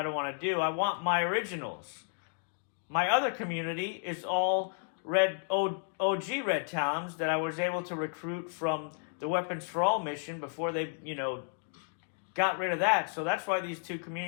don't want to do. I want my originals. My other community is all red OG red talons that I was able to recruit from the Weapons for All mission before they, got rid of that. So that's why these 2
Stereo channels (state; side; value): silent; right; digital silence